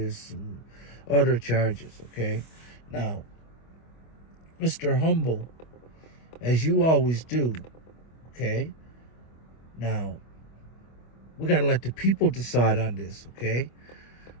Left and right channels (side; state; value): right; late; 25 ms